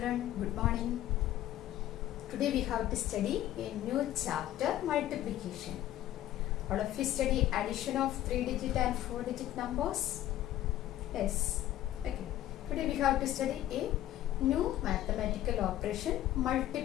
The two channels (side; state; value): right; quieter; 13.4 dB